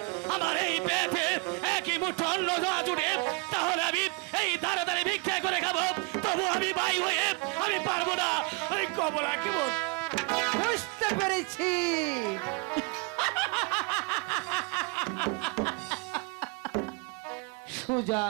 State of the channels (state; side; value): quieter; left; 29.8 dB